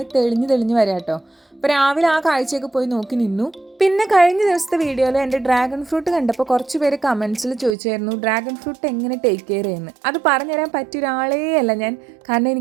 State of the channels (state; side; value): drops out; left; at 7.8 s